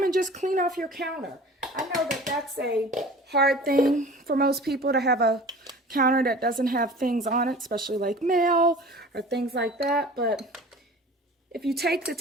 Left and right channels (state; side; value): normal; both; correlation 0.42